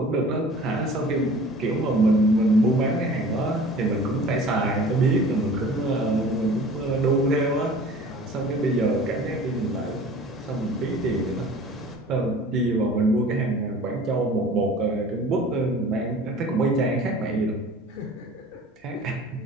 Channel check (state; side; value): normal; both; correlation 0.44